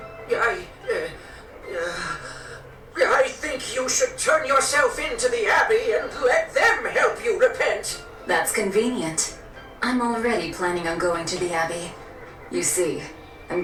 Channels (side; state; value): both; identical; correlation 1.00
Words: I think you should turn yourself into the Abbey and let them help you repent. That's convenient. I'm already planning on going to the Abbey. You see, I'm